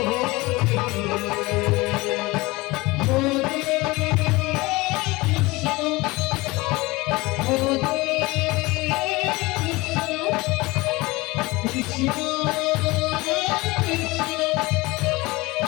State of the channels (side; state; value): right; quieter; 22.2 dB